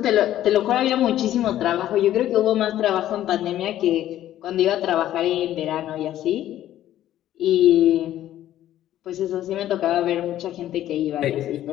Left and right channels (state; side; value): quieter; right; 12.7 dB